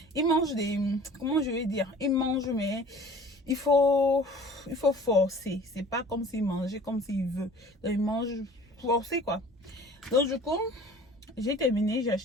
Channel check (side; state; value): both; normal; correlation 0.46